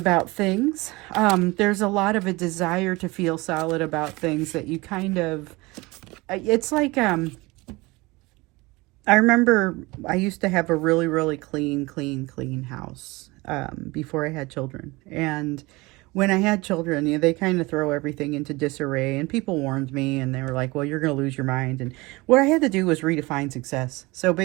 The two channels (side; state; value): left; quieter; 22.9 dB